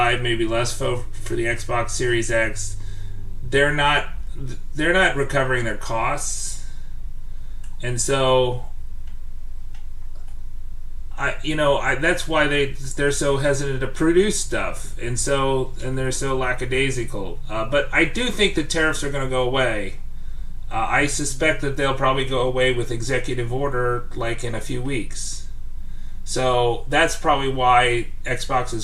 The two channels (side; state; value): both; identical; correlation 1.00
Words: maybe less for the Xbox Series X, they're not recovering their costs, and so that's why they're so hesitant to produce stuff, and they're so lackadaisical. But I do think the tariffs are going to go away. I suspect that they'll probably go away with executive order, like in a few weeks. So that's probably why Xbox